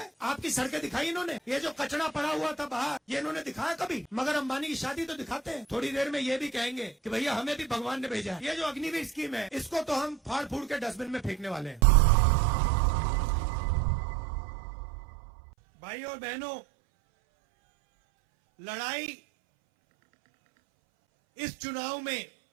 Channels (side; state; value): left; drops out; at 11.8 s